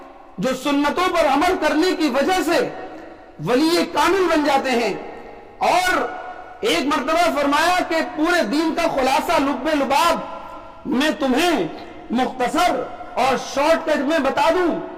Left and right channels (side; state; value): both; identical; correlation 1.00